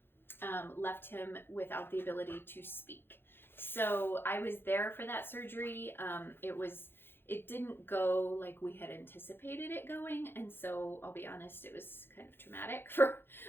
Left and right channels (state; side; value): late; right; 0.10 ms